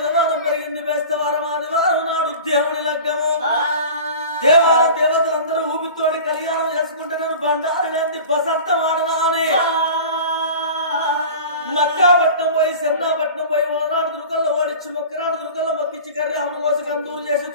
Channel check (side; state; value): both; inverted; correlation -0.37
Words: పెరిగింది బేస్తవారం, ఆదివారం నాడు దేవుడి లగ్గము. దేవతలందరూ ఊపితోడి కళ్యాణం చేసుకుంటే నేను బండారి లేని బసంతం ఆడనా అని మక్కాపట్నం పోయి సెన్నాపట్నం పోయి ఓనాడు దుర్గల్లో ఓడించి మొక్కరాడు దుర్గల్లో మొక్కించి కర్యాములు కోసి కందూరు చేసి